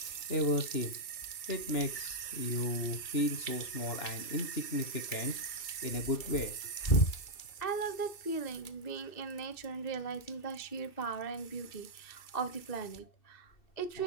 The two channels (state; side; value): late; right; 2.6 ms